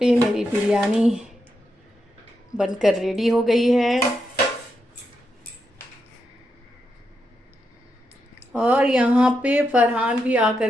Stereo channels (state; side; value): normal; both; correlation 0.84